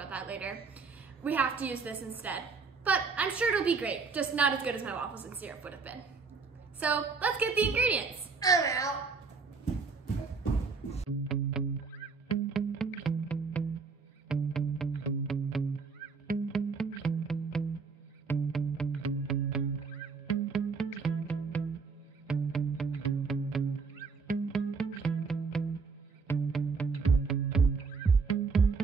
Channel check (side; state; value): left; quieter; 4.9 dB